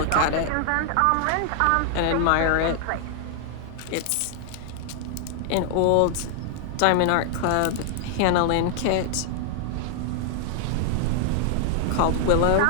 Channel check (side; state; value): both; different; correlation -0.01